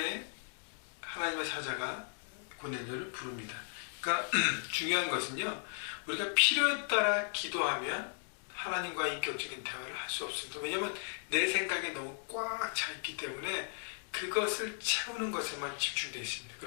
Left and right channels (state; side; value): silent; right; digital silence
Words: 하나님의 사자가 고넬료를 부릅니다. 그러니까 중요한 것은요, 우리가 필요에 따라 기도하면 하나님과 인격적인 대화를 할 수 없습니다. 왜냐하면 내 생각에 너무 꽉 차 있기 때문에 그것을 채우는 것에만 집중되어 있습니다.